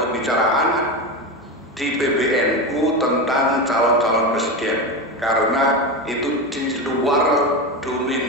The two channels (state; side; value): normal; both; correlation 0.18